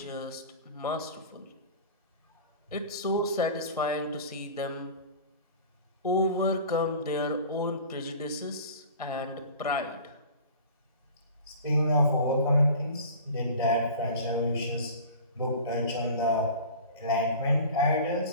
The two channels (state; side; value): inverted; both; correlation -0.39